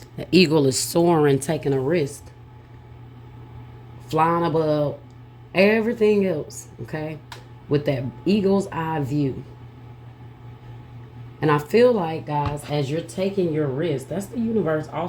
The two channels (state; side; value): identical; both; correlation 1.00